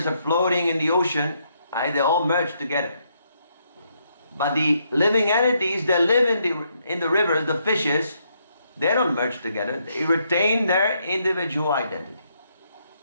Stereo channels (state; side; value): inverted; both; correlation -0.75